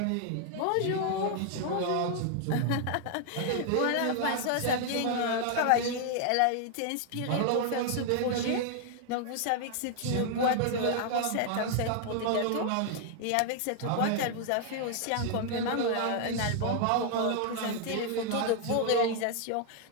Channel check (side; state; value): both; different; correlation 0.00